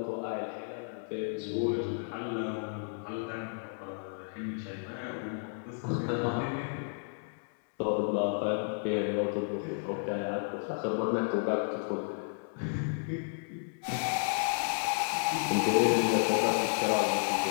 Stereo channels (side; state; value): right; silent; digital silence